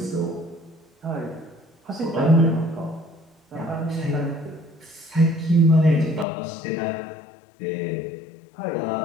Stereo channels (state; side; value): drops out; right; at 6.2 s